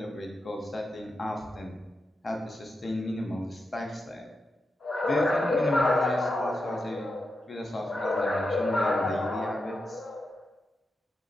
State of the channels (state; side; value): normal; both; correlation 0.88